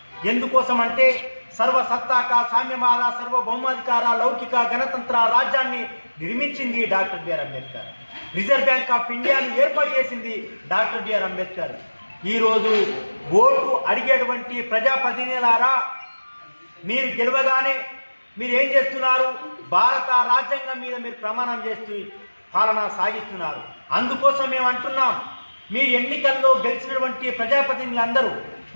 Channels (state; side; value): inverted; both; correlation -1.00